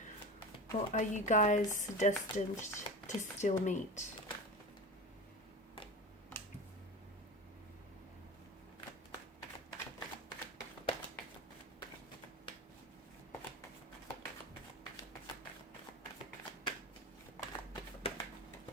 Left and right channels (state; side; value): normal; both; correlation 0.28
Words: Or are you guys destined to still meet?